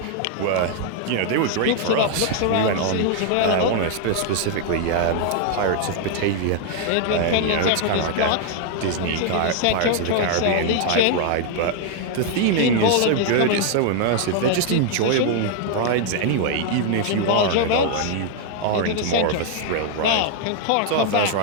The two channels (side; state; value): both; different; correlation 0.00